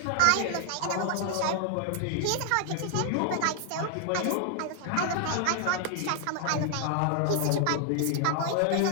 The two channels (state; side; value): different; both; correlation 0.00